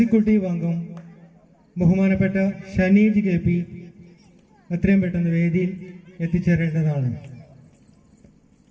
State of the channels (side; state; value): both; identical; correlation 1.00